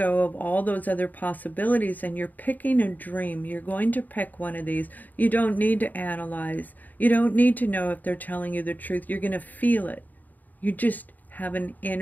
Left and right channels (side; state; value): right; late; 0.084 ms